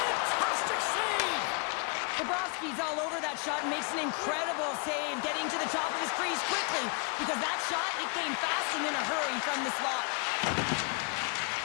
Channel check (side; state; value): right; quieter; 34.9 dB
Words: save! Bobrovsky's all over that shot and makes an incredible save, getting to the top of his crease quickly, because that shot, it came fast and in a hurry from the slot.